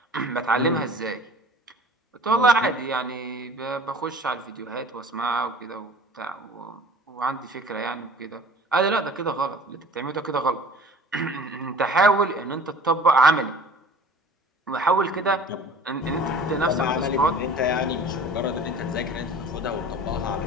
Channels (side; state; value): both; normal; correlation 0.45